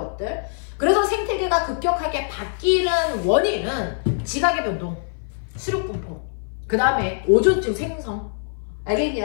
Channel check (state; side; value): silent; right; 58 dB below the other